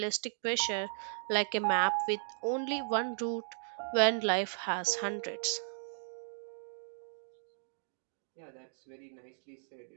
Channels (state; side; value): silent; left; digital silence